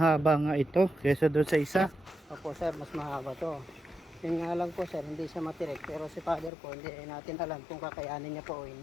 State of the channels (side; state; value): right; drops out; at 6.5 s